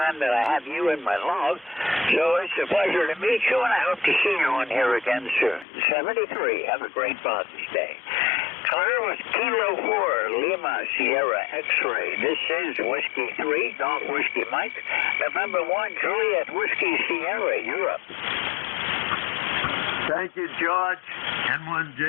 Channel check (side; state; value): right; drops out; at 5.7 s